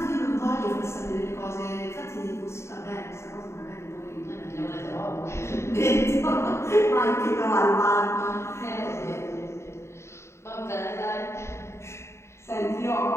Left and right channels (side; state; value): right; late; 0.13 ms